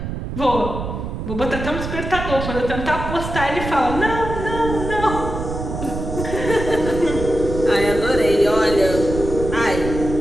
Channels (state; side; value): noise; right; rumble, 6 dB below the sound